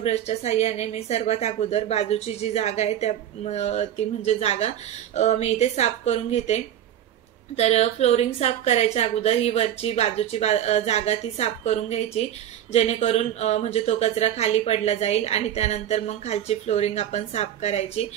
साहाय्याने मी सर्वात अगोदर बाजूची जी जागा आहे ती म्हणजे जागा मी इथे साफ करून घेते। तर फ्लोरिंग साफ करायच्या अगोदर ही वरची बाजूची जागा ती साफ करून घ्यायची, जेणेकरून म्हणजे तो कचरा खाली पडला जाईल आणि त्यानंतर मग खालची फ्लोरिंग आपण साफ करायची।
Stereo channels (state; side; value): quieter; left; 10.8 dB